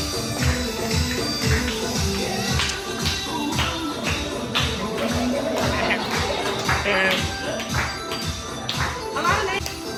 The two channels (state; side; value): identical; both; correlation 1.00